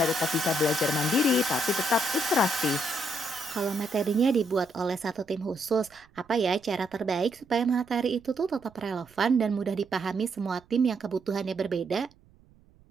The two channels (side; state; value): right; noise; rumble, 29 dB below the sound